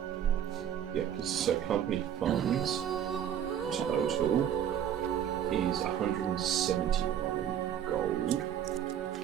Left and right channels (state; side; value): quieter; left; 9.7 dB